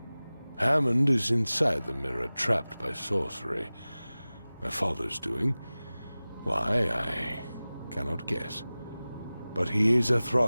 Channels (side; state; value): both; inverted; correlation -0.98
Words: Hammond is inside the mirror, trapped by sorcery. My father's doing? Why, I cannot guess. But he is a